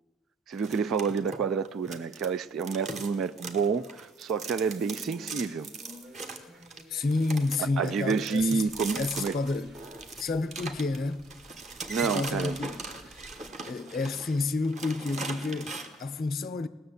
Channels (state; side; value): normal; both; correlation 0.61